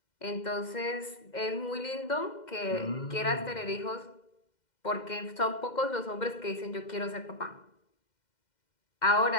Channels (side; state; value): right; late; 2.1 ms